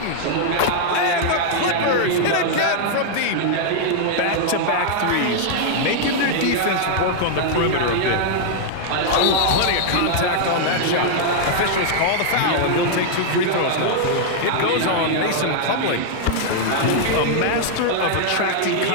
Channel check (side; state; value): both; different; correlation -0.01